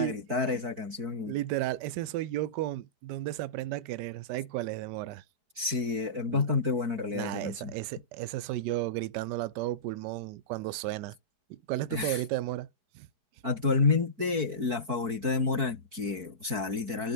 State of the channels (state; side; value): late; left; 4.5 ms